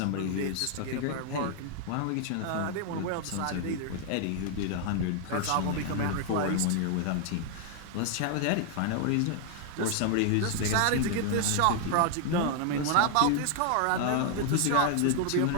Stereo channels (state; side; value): different; both; correlation 0.00